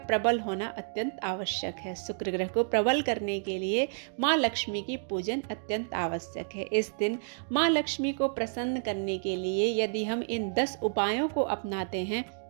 प्रबल होना अत्यंत आवश्यक है। शुक्र ग्रह को प्रबल करने के लिए माँ लक्ष्मी की पूजन अत्यंत आवश्यक है। इस दिन माँ लक्ष्मी को प्रसन्न करने के लिए यदि हम इन 10 उपायों को अपनाते हैं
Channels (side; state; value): left; silent; digital silence